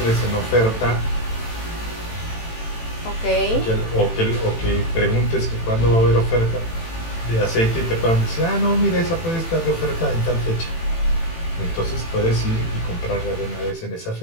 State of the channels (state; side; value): late; right; 18 ms